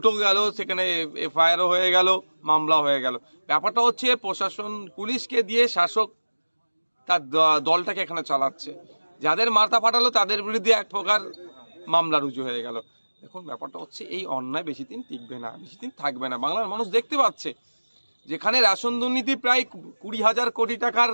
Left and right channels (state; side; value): inverted; both; correlation -1.00